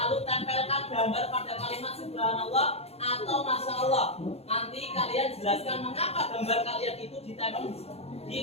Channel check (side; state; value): right; late; 0.30 ms